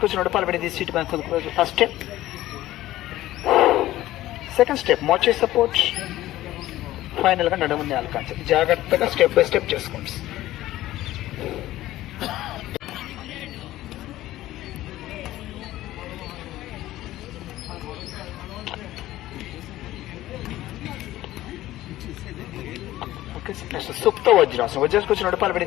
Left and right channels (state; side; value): quieter; right; 15.3 dB